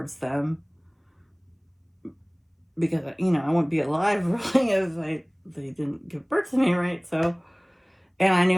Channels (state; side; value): identical; both; correlation 1.00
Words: them, because I wouldn't be alive really if they didn't give birth to me, right? So, and I